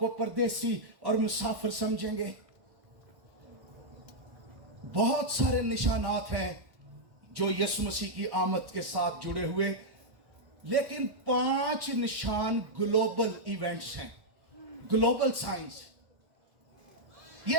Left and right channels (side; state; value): left; late; 1.1 ms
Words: परदेसी और मुसाफिर समझेंगे। बहुत सारे निशानात हैं जो यीशु मसीह की आमद के साथ जुड़े हुए, लेकिन 5 निशान ग्लोबल इवेंट्स हैं, ग्लोबल साइंस।